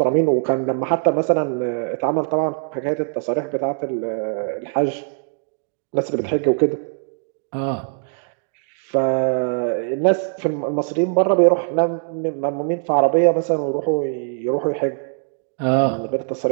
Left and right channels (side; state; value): left; silent; digital silence